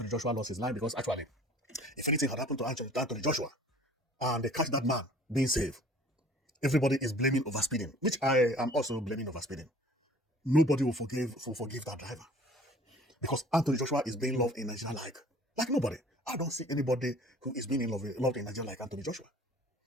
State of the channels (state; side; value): normal; both; correlation 0.50